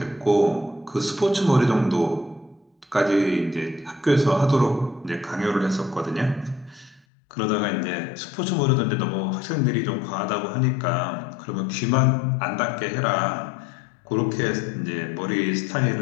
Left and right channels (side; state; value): right; drops out; at 7.0 s